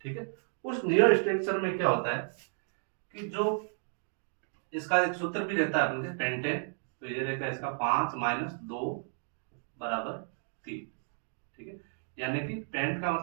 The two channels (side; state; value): left; silent; 56 dB below the other